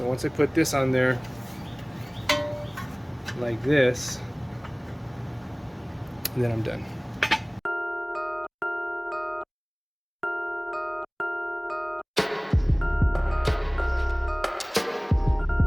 once I put this on there like this, then I'm done.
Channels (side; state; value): both; identical; correlation 1.00